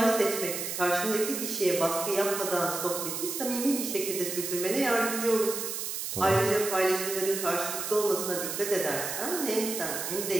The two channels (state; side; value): noise; right; hiss, 4 dB below the sound